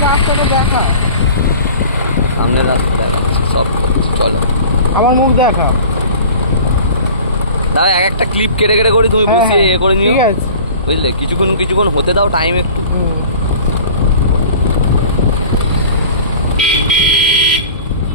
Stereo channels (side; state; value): both; inverted; correlation -0.43